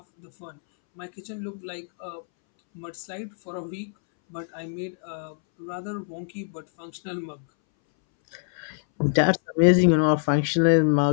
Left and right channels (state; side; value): silent; right; 62 dB below the other